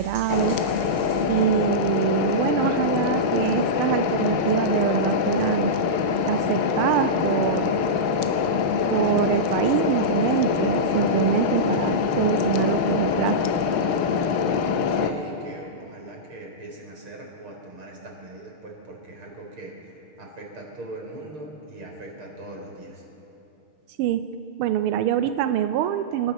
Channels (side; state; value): left; late; 6.2 ms